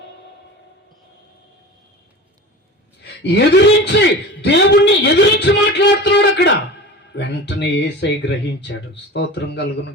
ఎదిరించి, దేవుణ్ణి ఎదిరించి మాట్లాడుతున్నాడు అక్కడ. వెంటనే యేసయ్య గ్రహించాడు. స్తోత్రం కలుగును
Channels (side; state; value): both; normal; correlation 0.33